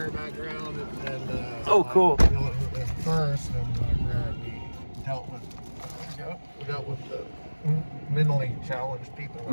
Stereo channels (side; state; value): both; inverted; correlation -1.00